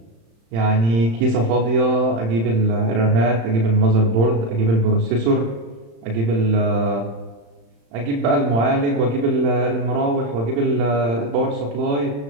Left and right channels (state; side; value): late; left; 35 ms